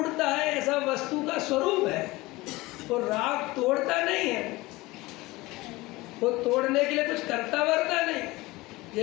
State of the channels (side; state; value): right; quieter; 20.8 dB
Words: है। ऐसा वस्तु का स्वरूप है। वो राग तोड़ता नहीं है, वो तोड़ने के लिए कुछ करता वरता नहीं।